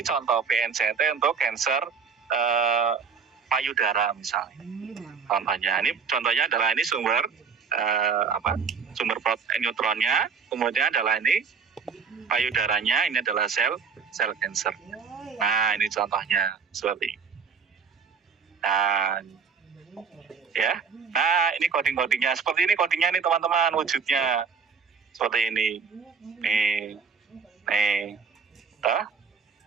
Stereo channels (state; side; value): quieter; left; 5.9 dB